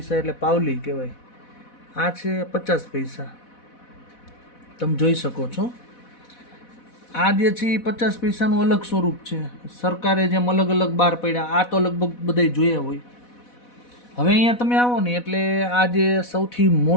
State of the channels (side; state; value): right; late; 4.1 ms